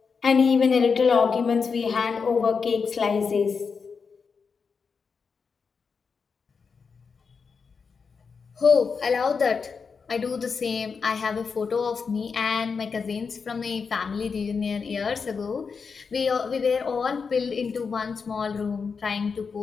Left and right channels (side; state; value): right; quieter; 5.4 dB